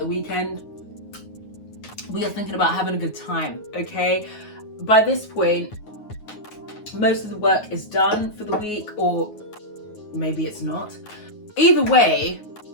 the weekend, we are thinking about having a good time, okay? By this point, most of the work is done for the week, or maybe it's not. Either way,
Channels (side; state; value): right; late; 9.5 ms